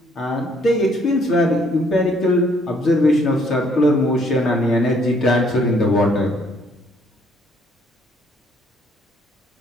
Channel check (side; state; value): both; normal; correlation 0.65